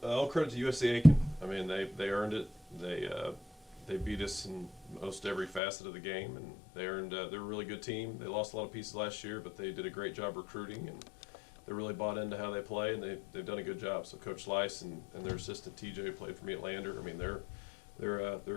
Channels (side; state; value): right; drops out; at 5.6 s